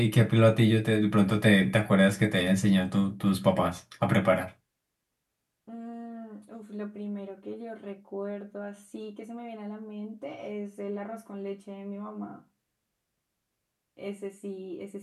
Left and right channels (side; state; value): both; identical; correlation 1.00